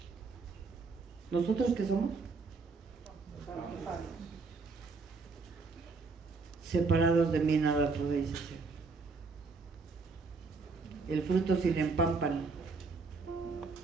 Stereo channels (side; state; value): left; quieter; 4.3 dB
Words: qué somos? Separados de mí nada podéis hacer. El fruto sin el pámpano